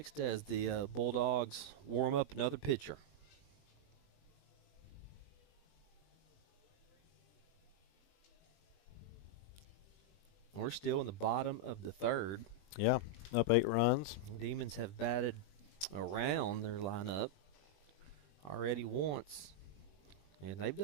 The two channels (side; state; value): right; late; 20 ms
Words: as the Bulldogs warm up another pitcher. We're still in the bottom of the third. Yeah, up 8 runs. Demons have batted around their lineup already once. And they've